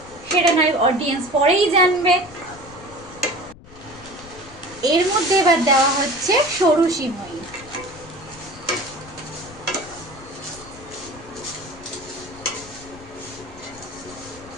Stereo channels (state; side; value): noise; left; rumble, 20 dB below the sound